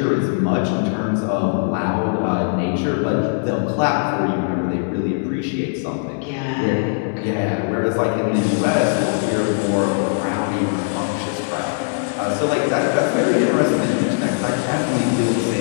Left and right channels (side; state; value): right; silent; 66 dB below the other